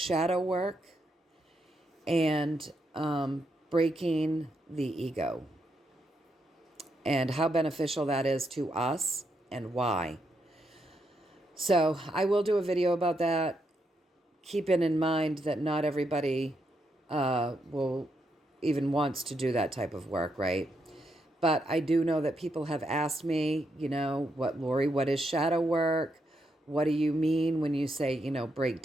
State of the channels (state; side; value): normal; both; correlation 0.80